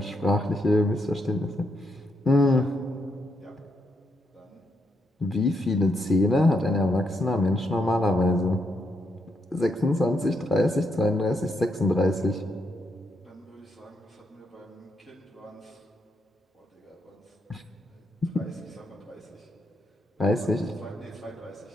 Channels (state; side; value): normal; both; correlation 0.79